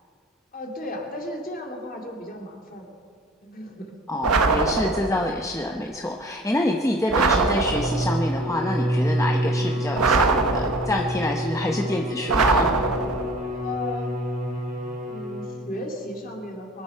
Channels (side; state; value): both; normal; correlation 0.48